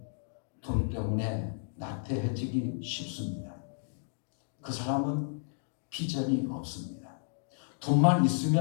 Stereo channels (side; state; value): right; silent; digital silence